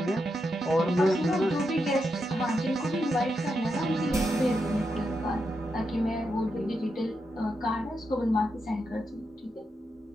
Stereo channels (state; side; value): normal; both; correlation 0.85